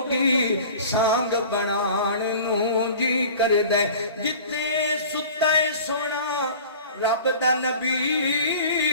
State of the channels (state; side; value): inverted; both; correlation -0.42